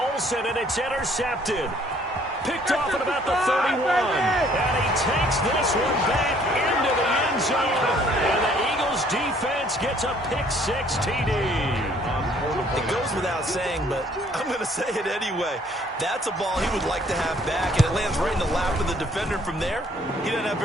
and it's intercepted. Picked off at about the 31. And he takes this one back into the end zone. And the Eagles defense gets a pick-6 TD. It goes without saying, but I'm going to say it anyway. That's a ball he would like to have back, and it lands right in the lap of the defender from there. He doesn't have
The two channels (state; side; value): normal; both; correlation 0.61